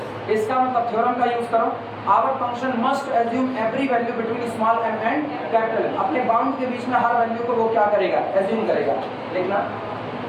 इसका मतलब थ्योरम का यूज करो, our function must assume every value between small m and capital M. अपने बाउंड के बीच में हर वैल्यू को वो क्या करेगा, एज्यूम करेगा। लिखना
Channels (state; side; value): identical; both; correlation 1.00